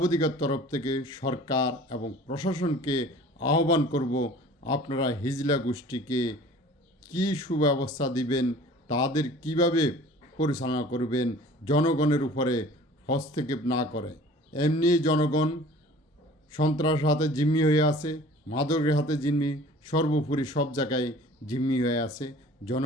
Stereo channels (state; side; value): normal; both; correlation 0.46